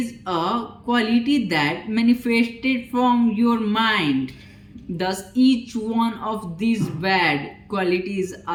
a quality that manifested from your mind. Thus each one of these bad qualities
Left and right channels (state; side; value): identical; both; correlation 1.00